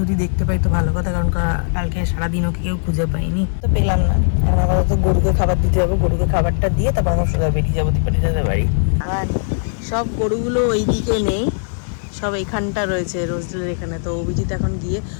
দেখতে পাই তো ভালো কথা, কারণ কালকে সারাদিন ওকে কেউ খুঁজে পাইনি, তো পেলাম না। এখন আপাতত গরুকে খাবার দিতে যাবো, গরুকে খাবারটা দিয়ে তারপর আমরা সোজা বেরিয়ে যাবো দীপানিতাদের বাড়ি। আর সব গরুগুলো ওই দিকে নেই, সব এখানটা রয়েছে রোজদের এখানে। তো অভিজিৎ এখন গিয়ে,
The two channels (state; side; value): silent; right; 66 dB below the other